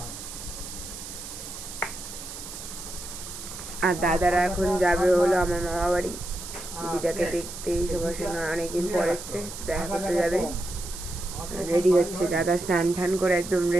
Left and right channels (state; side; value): noise; right; hiss, 10 dB below the sound